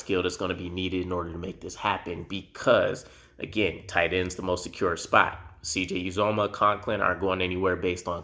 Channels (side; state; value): both; identical; correlation 1.00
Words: that's going to be needed in order to make this happen because, again, tight end's the most secure spot. CJ Uzoma, Conklin aren't going anywhere based on